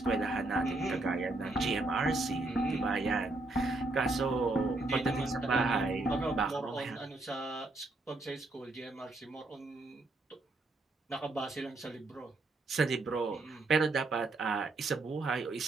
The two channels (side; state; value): left; quieter; 3.1 dB